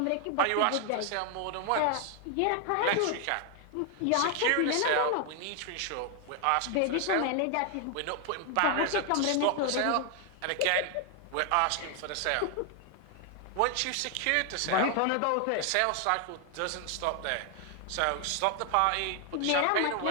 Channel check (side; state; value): both; different; correlation 0.00